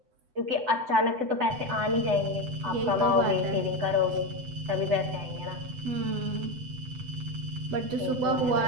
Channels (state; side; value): late; left; 8.0 ms